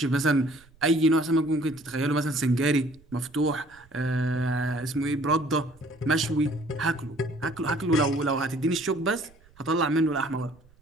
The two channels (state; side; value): noise; right; rumble, 28 dB below the sound